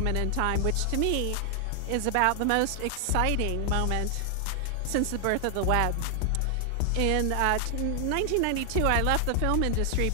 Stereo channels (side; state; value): both; different; correlation 0.00